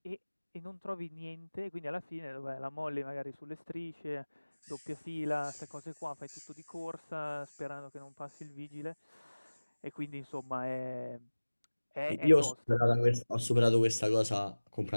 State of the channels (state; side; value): inverted; both; correlation -1.00